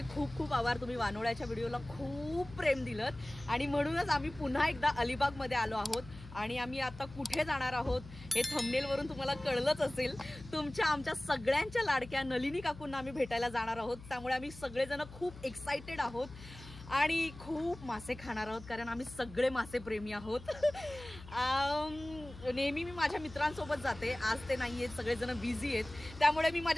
खूप खूप आभार. तुम्ही वानोळ्याच्या व्हिडिओला खूप प्रेम दिलं आणि म्हणूनच आम्ही पुन्हा एकदा अलिबागमध्ये आलो आहोत. आणि आम्ही आता कुठे जाणार आहोत हे थंबनेलवरून तुम्हाला कळलंच असेल. आमच्या सगळ्यांच्या लाडक्या नलिनी काकूंना आम्ही भेटायला जाणार आहोत. त्यामुळे आम्ही सगळेजण खूप एक्साइटेड आहोत आणि खूप मासे खाणार आहोत, कारण आम्ही सगळे मासे प्रेमी आहोत. नेहमी मी माझ्या मित्रांसोबत जाते, आज ते नाही आहेत, सगळेजण बिझी आहेत, त्यामुळे मी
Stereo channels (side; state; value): left; noise; hum, 16 dB below the sound